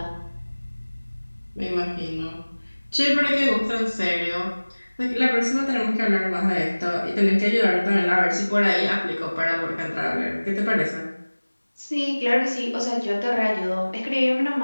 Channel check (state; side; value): inverted; both; correlation -1.00